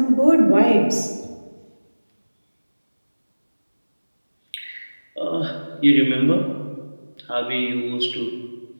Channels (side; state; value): both; inverted; correlation -1.00